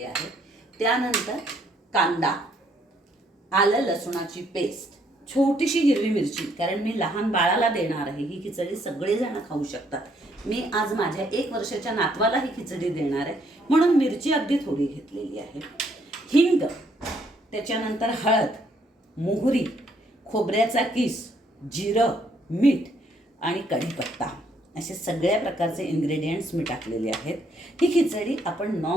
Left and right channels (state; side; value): normal; both; correlation 0.69